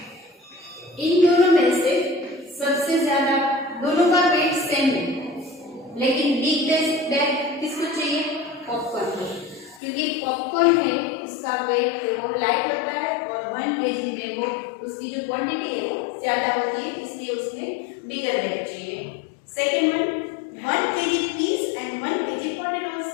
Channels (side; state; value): right; drops out; at 9.8 s